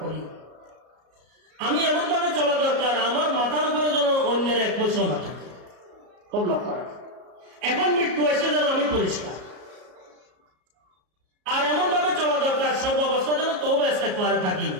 করি। আমি এমন ভাবে চলা দরকার, আমার মাথার উপরে যেন অন্যের এক পয়সা না থাকে, খুব লক্ষ্য রাখা। এখন মৃত্যু আসলে যেন আমি পরিষ্কার। আর এমন ভাবে চলা দরকার, সর্বাবস্থা যেন তওবা ইস্তেগফারে থাকি,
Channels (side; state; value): left; late; 33 ms